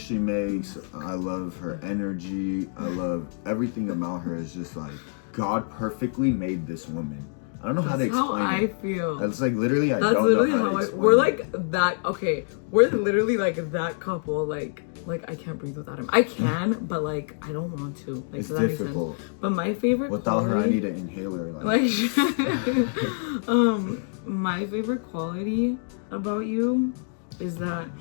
she makes. I love her energy. I love everything about her. Is just like, God perfectly made this woman. I don't know how to explain how I feel. That's like literally, That's don't literally know how how to we're explain like that. Okay, we're literally like that couple. Like I can't breathe without him. I can, but like I don't want to. Like, it's so that difficult. makes sense. But my favorite without quality, her, I need an inhaler. Like my favorite quality about you is that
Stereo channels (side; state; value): right; silent; 61 dB below the other